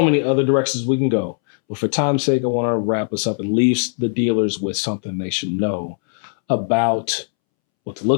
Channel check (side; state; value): right; silent; 66 dB below the other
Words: many other directions we can go. But for time's sake, I want to wrap us up and leave the dealers with something they should know about what to